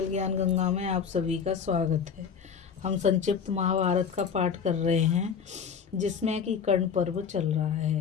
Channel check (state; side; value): quieter; right; 6.8 dB